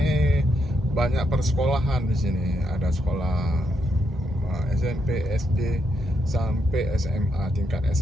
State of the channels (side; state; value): both; normal; correlation 0.79